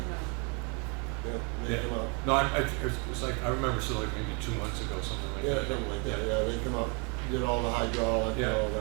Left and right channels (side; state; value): left; quieter; 33.9 dB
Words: Yeah, they come out. No, it's like, I remember, so like maybe 2 months ago, something like Yeah, that. something like that, yeah, they come out, did all the hydraulic and Yeah. all